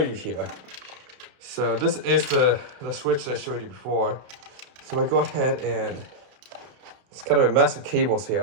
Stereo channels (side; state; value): left; late; 32 ms